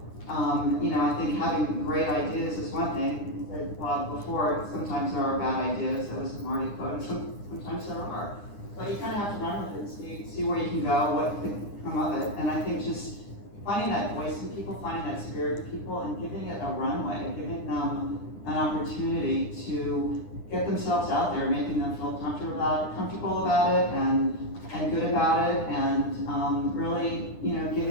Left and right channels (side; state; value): right; late; 9.9 ms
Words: I think having great ideas is one thing. You said, Bob, before, sometimes there are bad ideas. That was a Marty quote. Sometimes there are. But you kind of have to run with it and see where you can go, what could come of it. And I think just finding that voice in people, finding that spirit in people, and giving it a runway, giving them an opportunity to get themselves out there, making them feel comfortable about it and good about it, and really,